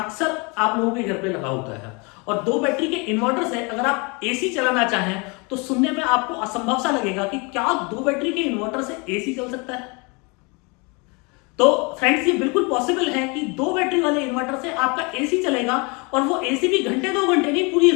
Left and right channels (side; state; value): right; quieter; 29.9 dB